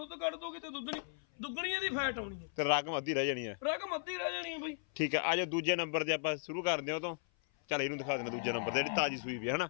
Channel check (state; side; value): silent; right; 54 dB below the other